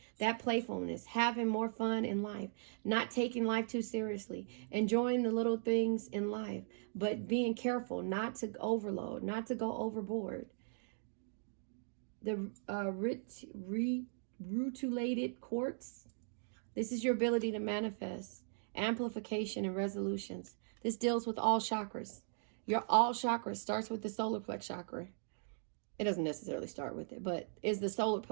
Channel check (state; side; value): silent; left; digital silence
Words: That playfulness, having more fun in life, not taking life too seriously, enjoying the little things in life, but being careful not to overload, not to go overboard. The rutilated quartz. This is your ability to manifest, amplification, and resolutions. This deals with all chakras. Your all chakras starts with the solar plex chakra. It doesn't necessarily start with it, but is the solar